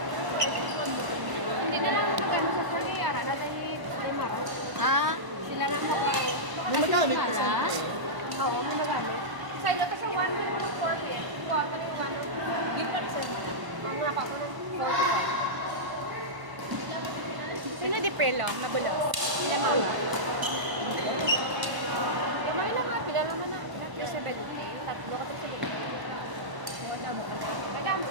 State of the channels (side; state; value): left; late; 1.0 ms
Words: Dala ni Mara. Ah, Sila lang ako. May magamit Wala. kasi. Oo, may magamit. Sa ilo to siya 140. Kuha pa rin yung ano. Give pa rin sa mga kapunan. sino di pelo? Magulo. Sila Mara. Lumay na nga, pila naman na. Yung 70. Tatlo ko sa wala mo. Kaya,